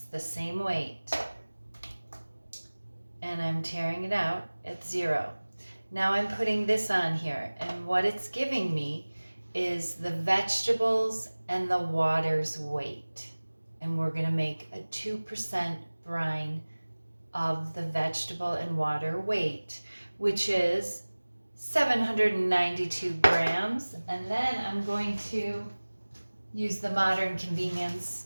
the same weight, and I'm tearing it out at 0. Now I'm putting this on here, and what it's giving me is the vegetables and the water's weight. And we're going to make a 2% brine of the vegetable and water weight, which is 792 grams. And then I'm going to use the modern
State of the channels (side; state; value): both; inverted; correlation -1.00